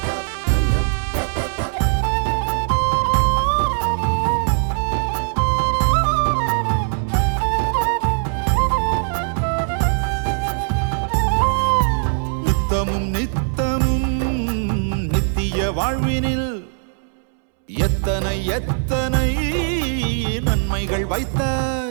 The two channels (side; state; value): left; silent; 66 dB below the other